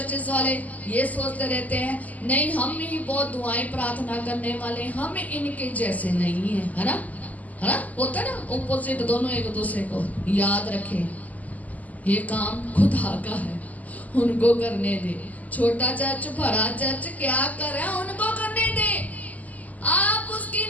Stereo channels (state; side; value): late; right; 0.077 ms